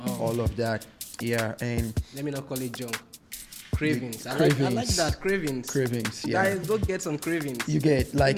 all of that. Yeah, and Let me not call it junk. Cravings. I like that. Cravings. Cravings. Yeah. Guys, go get some cravings. You get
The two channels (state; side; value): identical; both; correlation 1.00